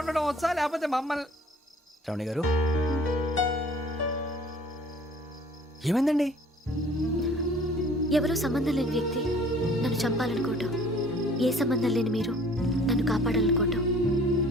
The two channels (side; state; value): both; normal; correlation 0.52